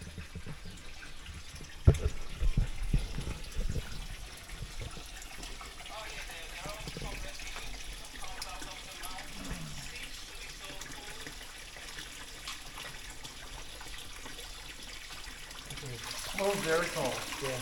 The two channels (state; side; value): identical; both; correlation 1.00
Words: Oh, very cold. Yeah.